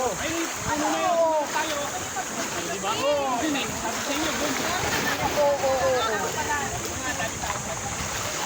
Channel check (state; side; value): identical; both; correlation 1.00